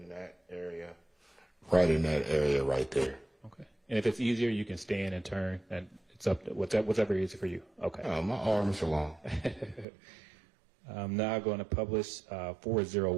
that area. Right in that area right there. Okay. And if it's easier, you can stand and turn, and it's up to whatever easy for you. Okay. My arms are long. I'm now going to publish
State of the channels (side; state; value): left; drops out; at 9.9 s